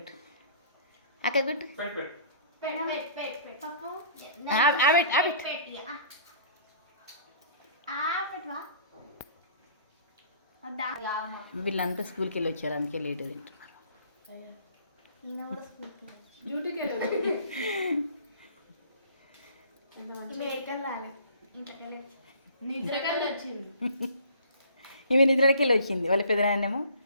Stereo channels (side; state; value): both; inverted; correlation -0.50